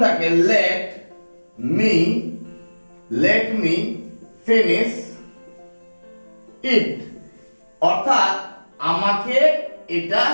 থাকে, লেট মি ফিনিশ ইট, অর্থাৎ আমাকে এটা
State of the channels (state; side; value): inverted; both; correlation -1.00